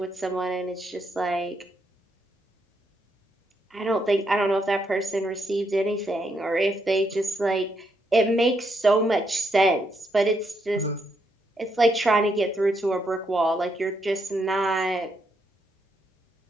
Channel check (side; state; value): both; normal; correlation 0.77